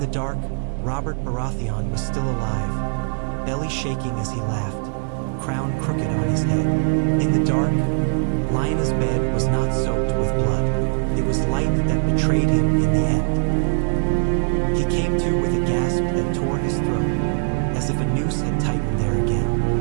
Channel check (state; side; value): silent; left; digital silence